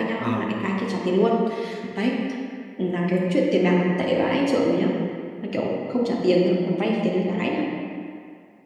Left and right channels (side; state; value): both; identical; correlation 1.00